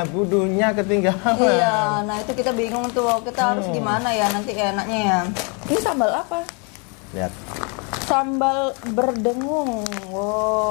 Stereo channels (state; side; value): quieter; right; 35.1 dB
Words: budunya ketinggalan. Iya, nah itu kita bingung tuh, kita harus gimana ya nanti enaknya ya. Ini sambal apa? Lihat. Sambal berdengung.